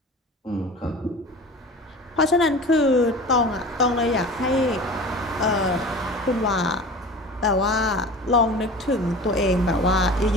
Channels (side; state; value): both; normal; correlation 0.37